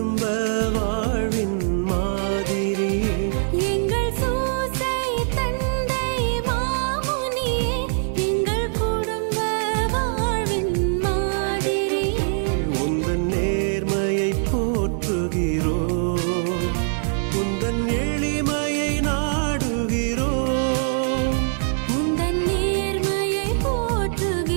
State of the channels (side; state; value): left; silent; digital silence